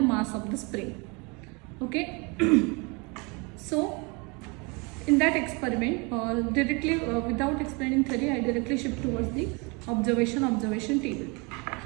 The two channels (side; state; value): left; quieter; 29.6 dB